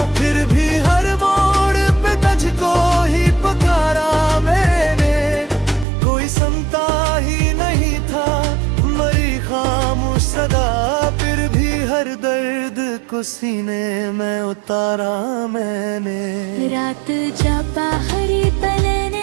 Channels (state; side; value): drops out; left; at 5.9 s